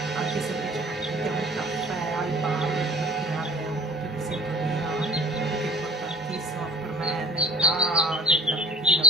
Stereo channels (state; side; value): normal; both; correlation 0.44